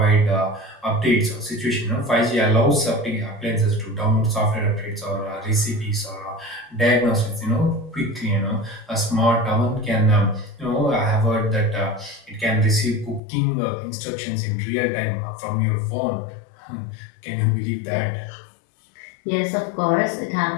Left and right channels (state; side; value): drops out; right; at 13.2 s